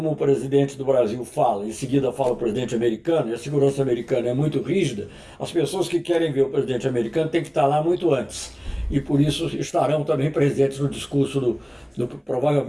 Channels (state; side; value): identical; both; correlation 1.00